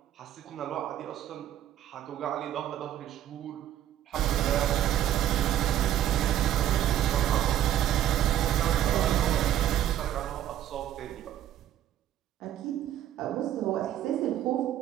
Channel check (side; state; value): left; quieter; 11.6 dB